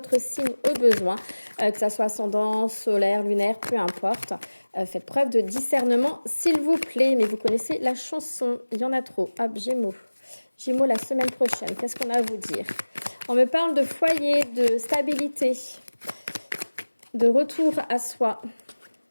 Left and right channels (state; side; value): inverted; both; correlation -1.00